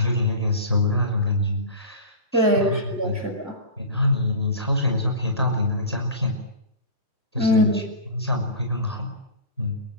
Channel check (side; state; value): both; inverted; correlation -0.31